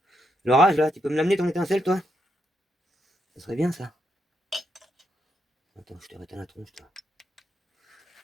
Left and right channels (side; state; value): both; normal; correlation 0.79